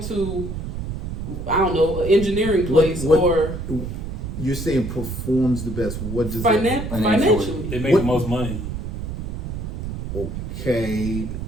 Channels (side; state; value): right; noise; rumble, 6 dB below the sound